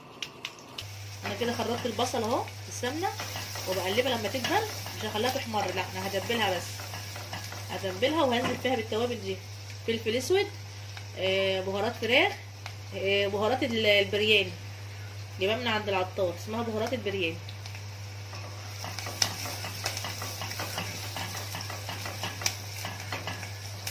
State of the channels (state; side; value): identical; both; correlation 1.00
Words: انا كده خرطت البصل اهو في السمنه وبقلبها لما تدبل، مش هخليها تحمر، لا انا هدبلها بس، هتبلها وهنزل فيها بالتوابل دي: فلفل اسود، بهارات فراخ، بهارات البرياني جايبها من عند العطار، اسمها بهارات البرياني.